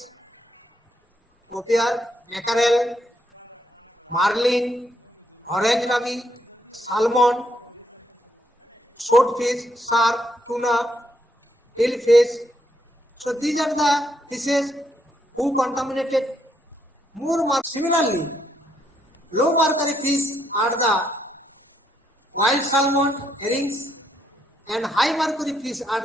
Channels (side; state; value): both; normal; correlation 0.76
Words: copier, mackerel, marlin, orange rabi, salmon, swordfish, shark, tuna, hillfish. So these are the fishes who contaminated more mercury. Similarly, low mercury fish are the wild salmon, herrings, and high mercury fish